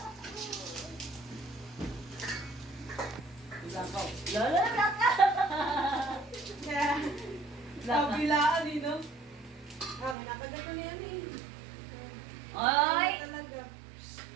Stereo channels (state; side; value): drops out; left; at 10.2 s